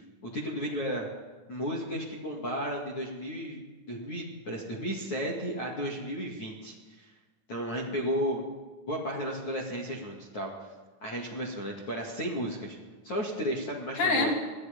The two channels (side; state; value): right; late; 9.3 ms